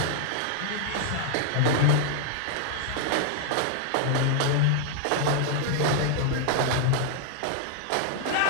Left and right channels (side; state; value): both; different; correlation 0.00